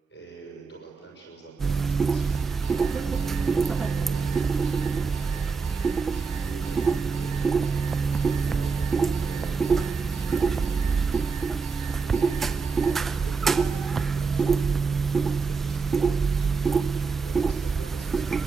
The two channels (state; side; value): quieter; left; 4.9 dB